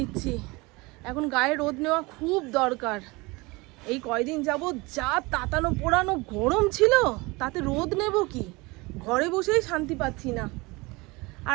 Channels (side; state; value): left; quieter; 24.4 dB